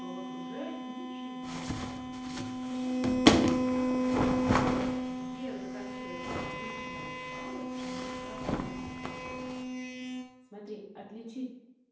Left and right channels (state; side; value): identical; both; correlation 1.00